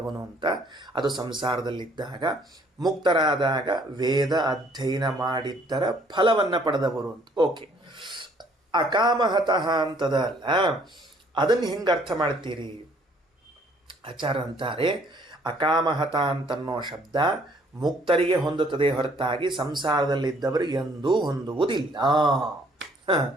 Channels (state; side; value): normal; both; correlation 0.62